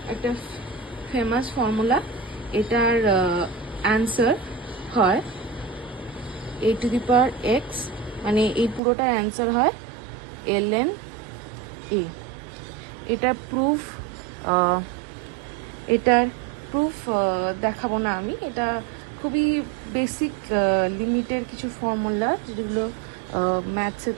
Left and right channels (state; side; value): drops out; left; at 8.8 s